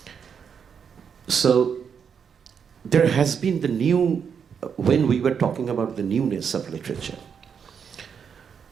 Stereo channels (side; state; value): left; quieter; 7.0 dB